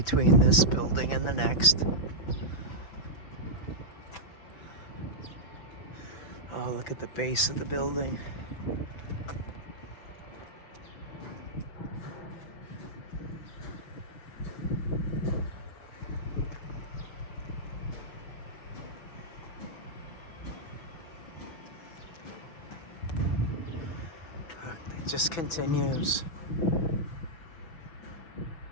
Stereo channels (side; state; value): right; late; 6.0 ms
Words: this building and the next. Oh, look at the base of the building. It just continues.